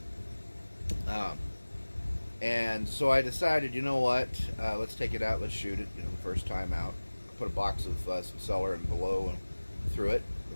And so I decided, you know what, let's take it out, let's shoot it, you know, the first time out. I put a box of some Cellar and Below and through it, or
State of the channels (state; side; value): inverted; both; correlation -1.00